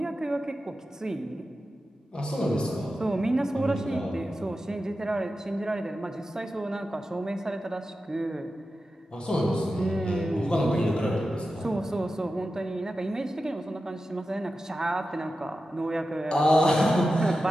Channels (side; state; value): both; normal; correlation 0.92